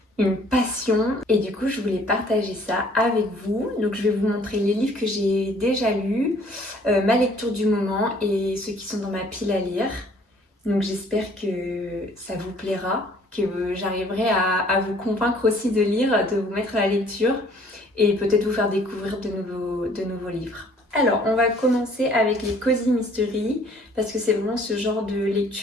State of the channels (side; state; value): both; normal; correlation 0.58